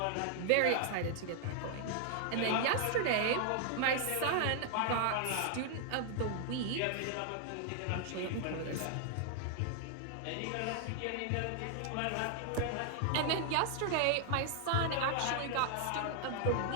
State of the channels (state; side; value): different; both; correlation 0.00